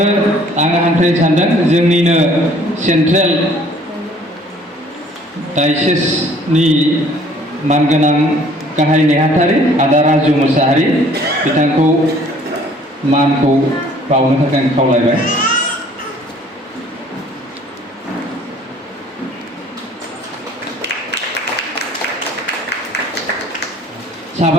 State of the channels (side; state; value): both; normal; correlation 0.56